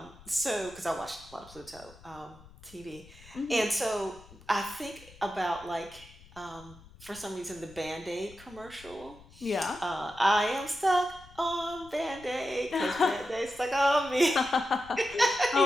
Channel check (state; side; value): noise; left; rumble, 22 dB below the sound